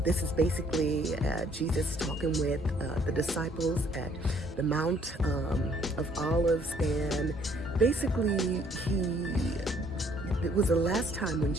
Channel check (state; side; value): normal; both; correlation 0.63